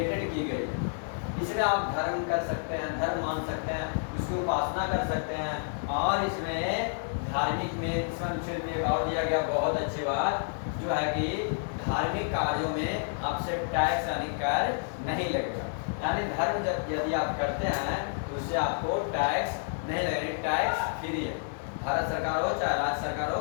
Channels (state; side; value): silent; right; digital silence